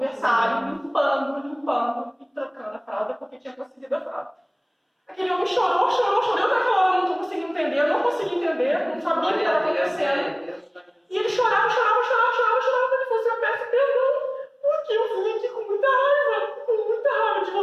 limpando e trocando a fralda, porque tinha conseguido a fralda. Aquele homem chorou, eu naquela hora não consegui entender, não sabia o que estava acontecendo. E ele chorava, ele falou assim, eu peço perdão, porque eu vim aqui com muita raiva de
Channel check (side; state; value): both; identical; correlation 1.00